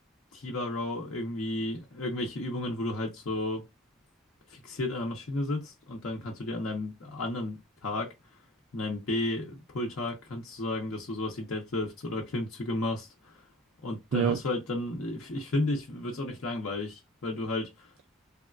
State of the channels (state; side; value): normal; both; correlation 0.42